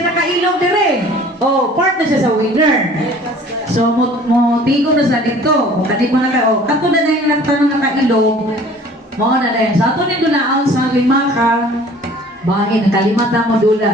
nakailog dire. Oh, part na siya sa winner. So, mo tigo na sa dito. Kung kanit mo na ka, oh, kato na yung nagtanong nakailog, mo na rin. Sa ato nito na sa lima ka, bakit nakalimata mo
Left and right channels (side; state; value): both; normal; correlation 0.50